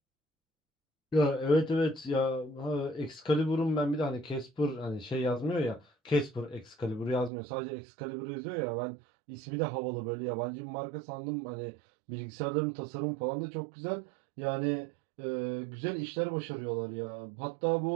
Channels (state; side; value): drops out; left; at 7.3 s